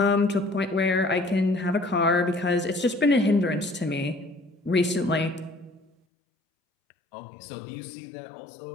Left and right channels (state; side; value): drops out; right; at 5.9 s